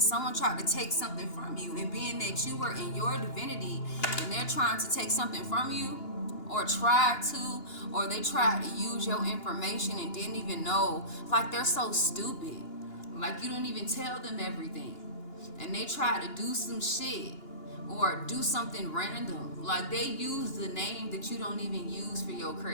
someone tried to take something from you, and being that you were in your divinity and they're trying to take something from you, or they tried to use your information and didn't even know, like they're so stupid, like you didn't even tell them everything, and they tried to do some shit or do something random, like they use the name that you don't even use for your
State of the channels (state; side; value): late; right; 2.9 ms